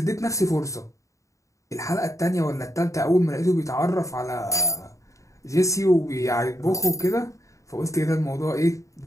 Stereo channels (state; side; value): late; right; 0.15 ms